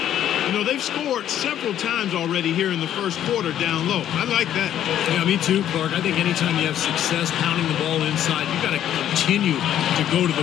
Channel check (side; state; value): right; quieter; 11.0 dB